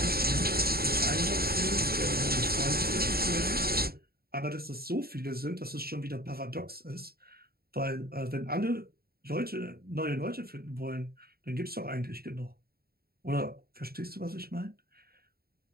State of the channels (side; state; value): left; late; 0.45 ms